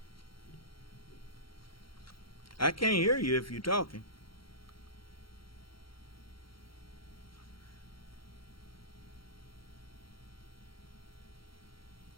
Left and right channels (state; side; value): late; right; 0.74 ms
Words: I can't hear you if you're talking.